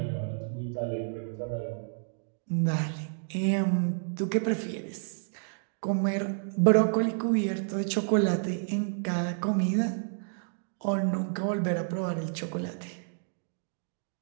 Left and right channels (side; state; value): left; silent; digital silence